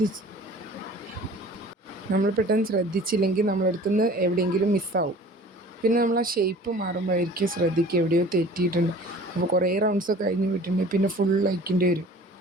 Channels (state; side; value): normal; both; correlation 0.46